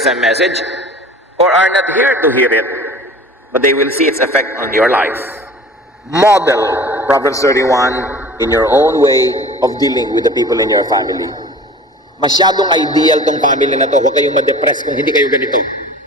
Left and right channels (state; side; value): normal; both; correlation 0.42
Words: message or are not here to hear it, but they will see its effect on your life. Model Proverbs 31 in your own way of dealing with the people in your family. Masyadong ideal tong family na to. Huwag kayong ma-depress kung hindi kayo ganito.